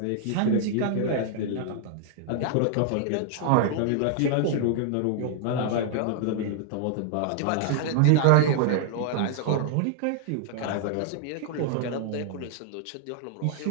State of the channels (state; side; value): different; both; correlation 0.00